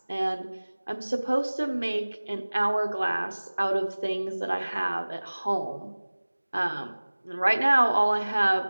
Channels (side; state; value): both; inverted; correlation -1.00